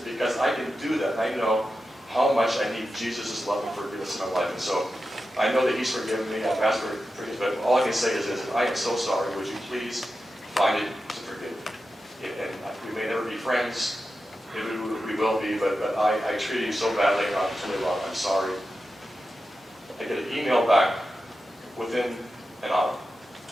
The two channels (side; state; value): both; normal; correlation 0.91